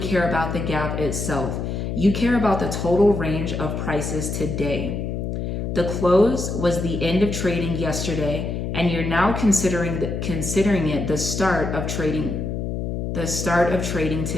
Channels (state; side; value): noise; left; hum, 3 dB below the sound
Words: about the gap itself. You care about the total range of prices today. The close was the end of trading yesterday, and you're now considering it the start of trading